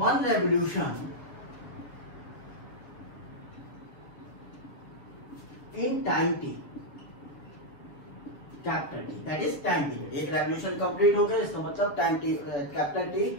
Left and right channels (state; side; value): late; right; 7.2 ms